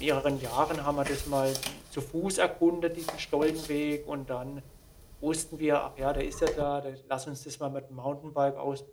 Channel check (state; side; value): identical; both; correlation 1.00